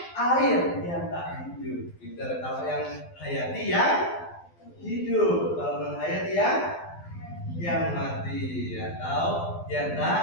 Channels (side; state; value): right; late; 12 ms